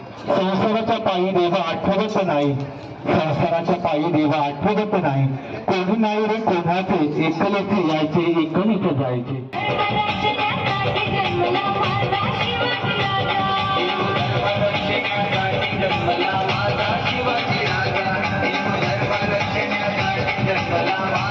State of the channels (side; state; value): both; identical; correlation 1.00